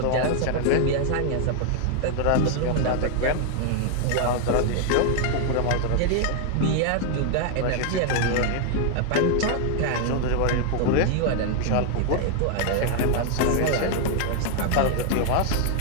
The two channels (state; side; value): different; both; correlation 0.00